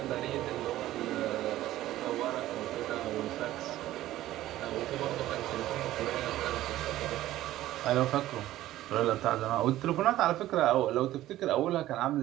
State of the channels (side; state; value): left; quieter; 14.7 dB